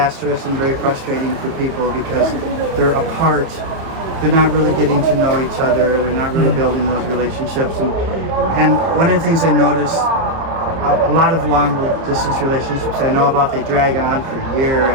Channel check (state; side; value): late; left; 30 ms